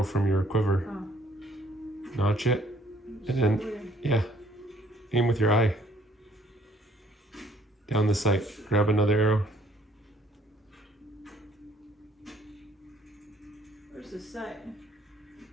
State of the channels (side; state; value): both; normal; correlation 0.62